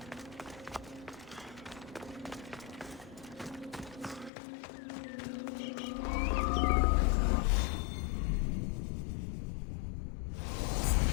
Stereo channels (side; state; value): right; drops out; at 4.3 s